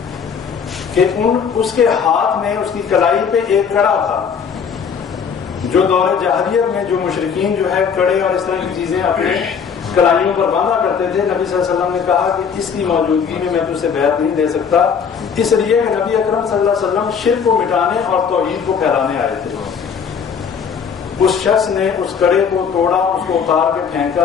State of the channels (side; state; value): right; quieter; 6.6 dB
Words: کہ اس کے ہاتھ میں اس کی کلائی پہ ایک کڑا تھا. جو دور جاہلیت میں جو مشرکین جو ہے کڑے اور اس طرح کی چیزیں اپنے کلائیوں پر باندھا کرتے تھے، نبی صلی اللہ علیہ وسلم نے کہا کہ اس کی موجودگی میں تجھ سے بیعت نہیں دے سکتا، اس لیے کہ نبی اکرم صلی اللہ علیہ وسلم شرک کو مٹانے اور توحید کو پھیلانے آئے تھے. اس شخص نے اس کڑے کو توڑا، اس کو اتار کے